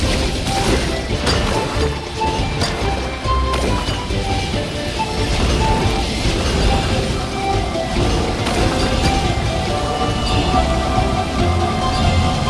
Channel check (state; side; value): identical; both; correlation 1.00